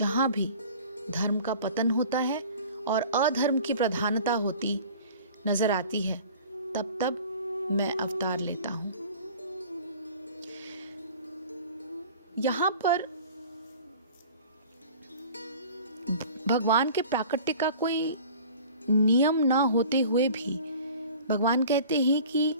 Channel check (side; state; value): both; inverted; correlation -0.44